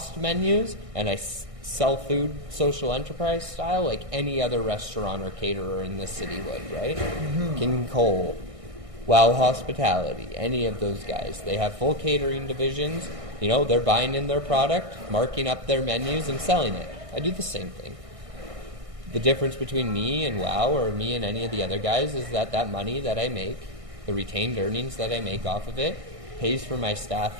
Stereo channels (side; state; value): left; late; 1.6 ms